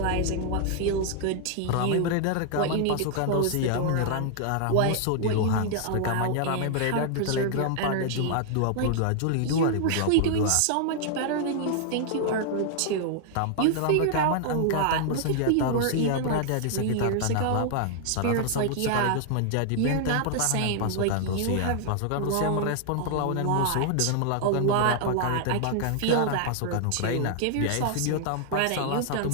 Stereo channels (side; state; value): both; different; correlation 0.00